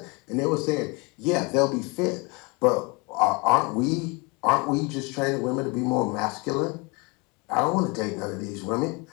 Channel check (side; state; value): right; quieter; 28.7 dB